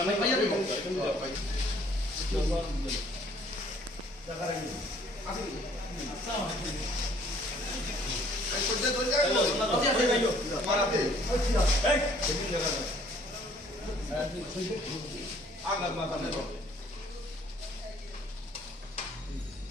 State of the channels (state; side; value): normal; both; correlation 0.59